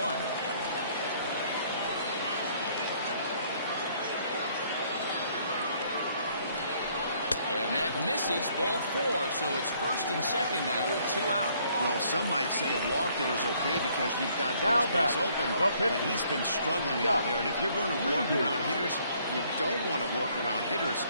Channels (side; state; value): both; inverted; correlation -0.64